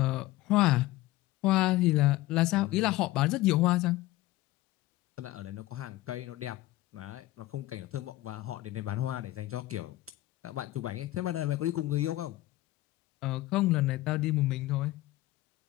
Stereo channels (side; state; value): right; quieter; 17.2 dB